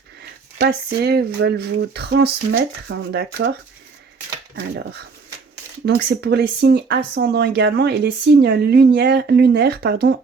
passer, veulent vous transmettre, d'accord? Alors, donc c'est pour les signes ascendants également et les signes lunaires,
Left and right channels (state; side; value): quieter; left; 4.8 dB